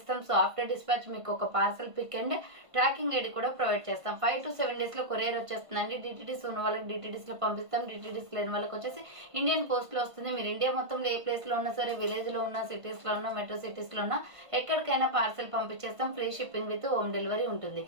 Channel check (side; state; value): left; late; 1.5 ms